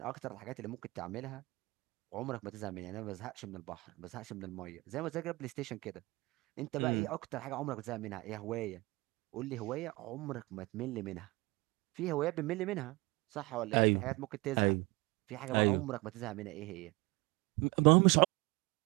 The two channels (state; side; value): quieter; left; 23.6 dB